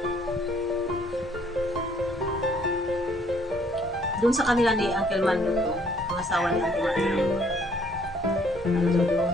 Doon sa kanila ni Uncle Mando to, mga asawa ni Uncle Mando. Ano doon?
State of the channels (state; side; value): normal; both; correlation 0.63